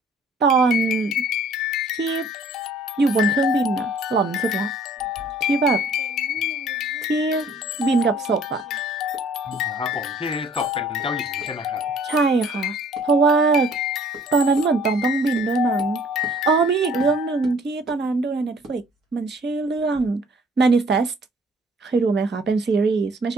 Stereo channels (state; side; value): normal; both; correlation 0.56